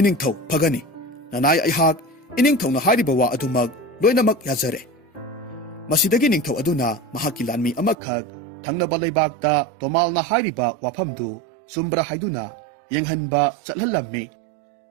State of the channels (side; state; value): left; drops out; at 8.0 s